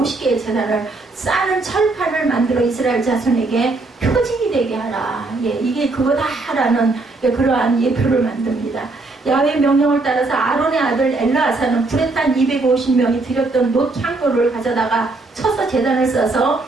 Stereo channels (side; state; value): left; quieter; 3.4 dB